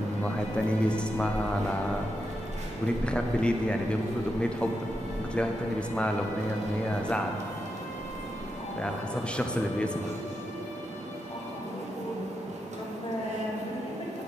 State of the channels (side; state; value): both; normal; correlation 0.85